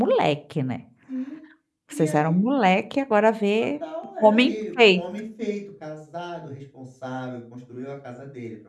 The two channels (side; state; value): both; identical; correlation 1.00